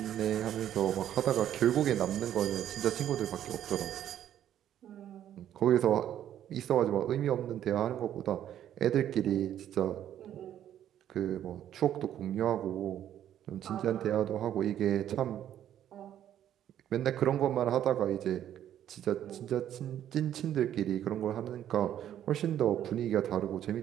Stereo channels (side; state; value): left; quieter; 10.9 dB